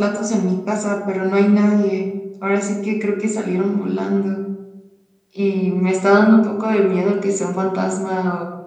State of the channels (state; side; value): identical; both; correlation 1.00